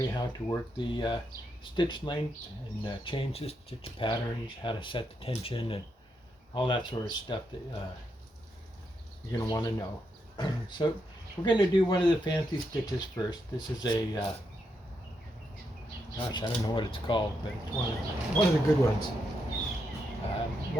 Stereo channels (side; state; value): both; normal; correlation 0.81